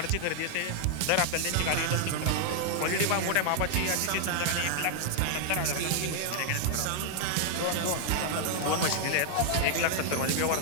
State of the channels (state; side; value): different; both; correlation 0.00